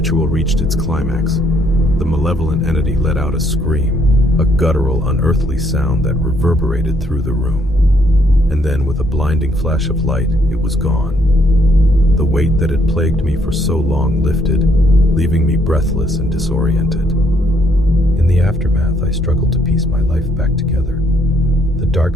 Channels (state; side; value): normal; both; correlation 0.69